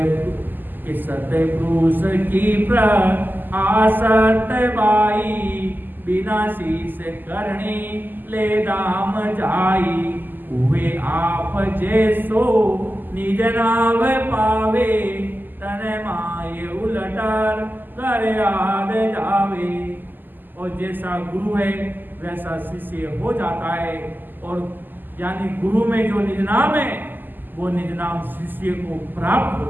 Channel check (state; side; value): late; left; 0.089 ms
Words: सत्य पुरुष की आसत बाई, बिना शीस करणी ले दाम जाई। हुए आप जैसो निज नाव पावे, तन माय उलटर कर याद जावे। और जैसा गुरु है वैसा शिष्य हो जाता है। और यानी गुरु में जो निज नाम है वो निज नाम शिष्य को प्राप्त